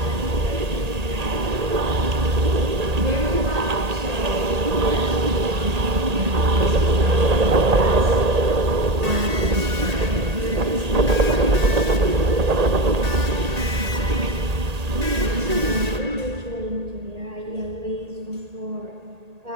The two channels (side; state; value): left; late; 1.8 ms